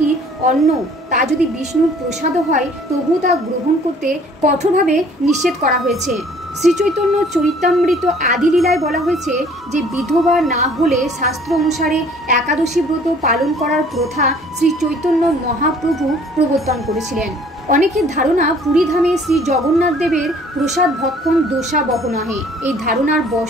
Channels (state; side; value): normal; both; correlation 0.55